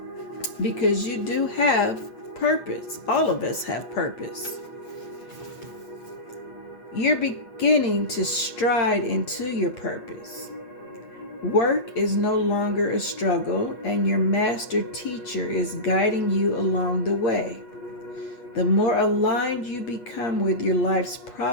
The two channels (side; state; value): right; late; 8.3 ms